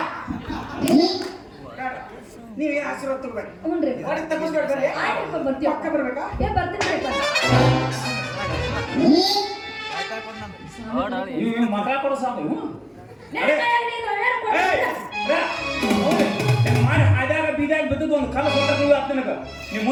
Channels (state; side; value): identical; both; correlation 1.00